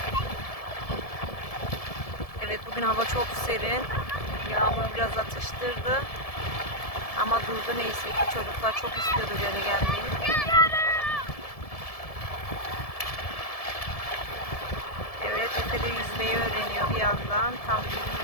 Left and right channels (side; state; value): right; late; 1.7 ms